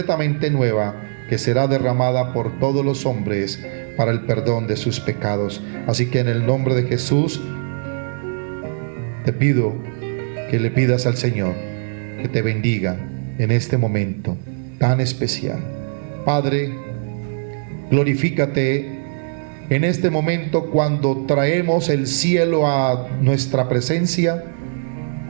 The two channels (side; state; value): left; silent; digital silence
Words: nueva, que será derramada por todos los hombres para el perdón de sus pecados. Así que en el nombre de Jesús te pido que le pidas al Señor que te bendiga en este momento tan especial. Padre, glorifícate en este momento cuando traemos el cielo a nuestra presencia,